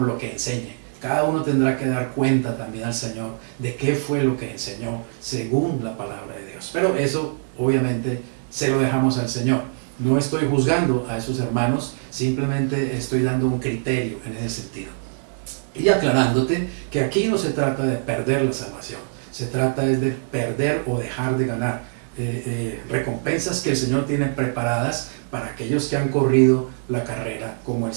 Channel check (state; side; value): silent; left; 60 dB below the other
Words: lo que enseñe. Cada uno tendrá que dar cuenta también al Señor de qué fue lo que enseñó según la palabra de Dios. Pero eso obviamente se lo dejamos al Señor. No estoy juzgando a esos hermanos, simplemente estoy dando un criterio en ese sentido. Y aclarándote que aquí no se trata de perder la salvación. Se trata es de perder o dejar de ganar recompensas que el Señor tiene preparadas para aquellos que han corrido la carrera como el